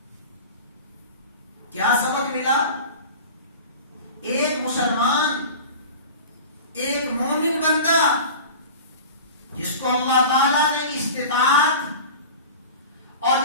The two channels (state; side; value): inverted; both; correlation -0.36